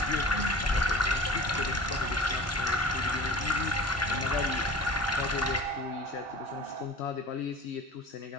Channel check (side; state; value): both; normal; correlation 0.40